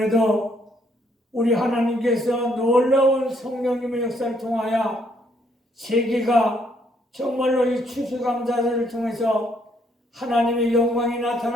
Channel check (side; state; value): both; normal; correlation 0.70